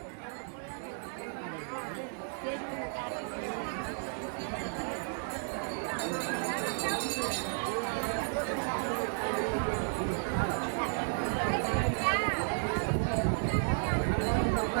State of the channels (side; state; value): left; silent; digital silence